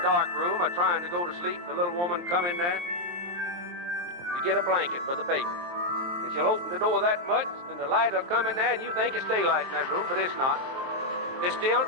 room or trying to go to sleep, the little woman come in there to get a blanket for the baby. And she'll open the door that much, and the light will come in there, and you think it's daylight in that room, but it's not. It's still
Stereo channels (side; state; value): left; late; 23 ms